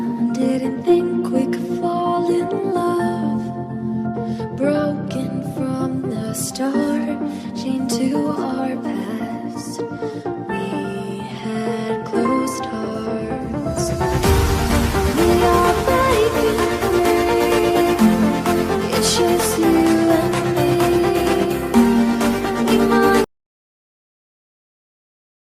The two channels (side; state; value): both; identical; correlation 1.00